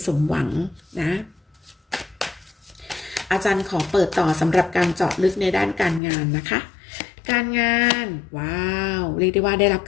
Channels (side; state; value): right; drops out; at 6.0 s